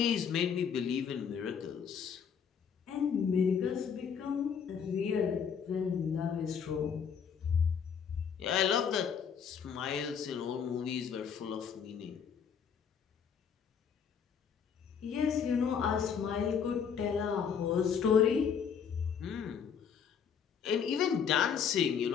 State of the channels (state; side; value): quieter; right; 7.1 dB